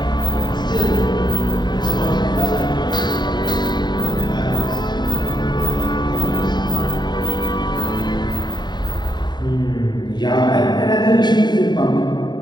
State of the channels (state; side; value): late; right; 0.21 ms